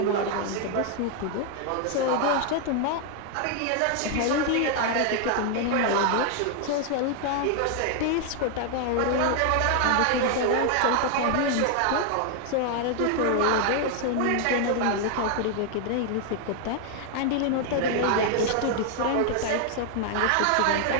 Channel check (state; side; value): different; both; correlation 0.00